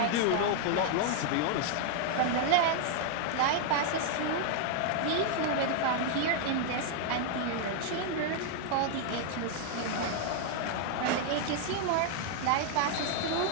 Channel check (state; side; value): different; both; correlation 0.00